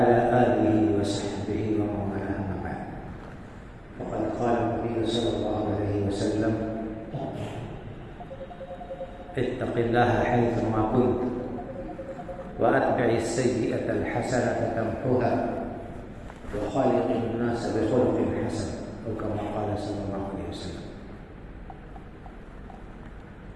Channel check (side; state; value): both; identical; correlation 1.00